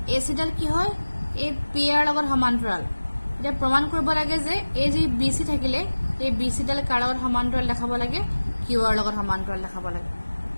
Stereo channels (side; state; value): both; inverted; correlation -1.00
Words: AC ডাল কি হয় এই PR ৰ লগত সমান্তৰাল এতিয়া প্ৰমাণ কৰিব লাগে যে এই যে BC থাকিলে এই BC ডাল কাৰ লগত সমান্তৰাল দেখাব লাগে QR ৰ লগত সমান্তৰাল দেখাব লাগে